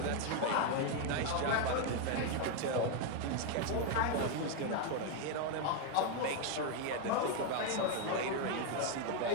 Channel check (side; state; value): both; different; correlation 0.01